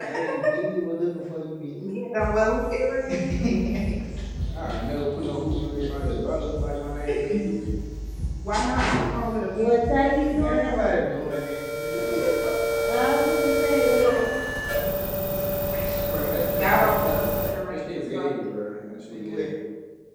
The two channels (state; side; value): identical; both; correlation 1.00